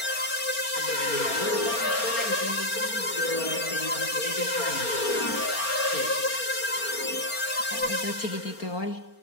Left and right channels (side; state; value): right; late; 4.3 ms